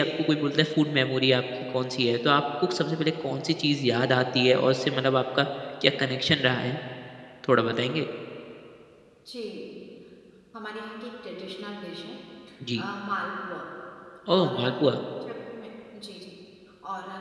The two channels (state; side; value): identical; both; correlation 1.00